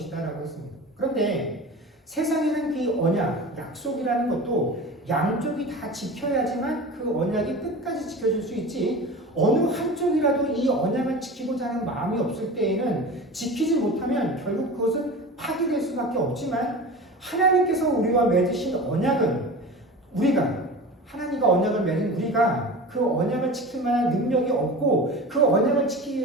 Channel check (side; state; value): both; normal; correlation 0.33